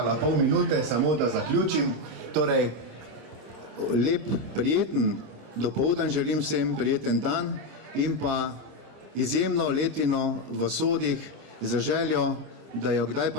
pol minute, samo da zaključim. Torej, lep, prijeten dopoldan želim vsem, prijeten dan in pa izjemno letino v sodih za željo, da jo kdaj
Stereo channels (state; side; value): late; left; 26 ms